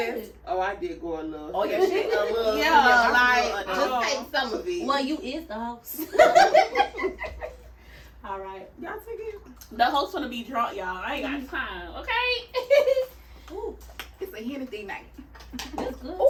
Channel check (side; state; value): both; identical; correlation 1.00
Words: sis. Oh, I did go a little. Oh, yeah, shit. A little. Yeah, like, like, just take some of it. Well, you is the host. All right. Y'all take it. The host gonna be drunk, y'all. I ain't got time, okay? Ooh, It's a Hennessy night. that's good